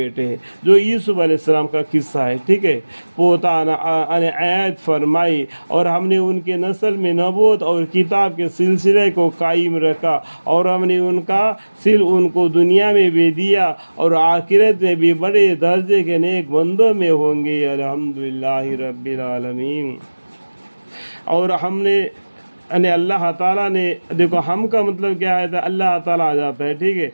ہیں، جو یوسف علیہ السلام کا قصہ ہے، ٹھیک ہے۔ پوتانا آیت فرمائی، اور ہم نے ان کے نسل میں نبوت اور کتاب کے سلسلے کو قائم رکھا، اور ہم نے ان کو دنیا میں بھی دیا، اور آخرت میں بھی بڑے درجے کے نیک بندوں میں ہوں گے، الحمدللہ رب العالمین۔ اور ہم نے اللہ تعالیٰ نے، دیکھو ہم کا مطلب کیا ہے، اللہ تعالیٰ آ جاتا ہے، ٹھیک ہے۔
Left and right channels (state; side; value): inverted; both; correlation -1.00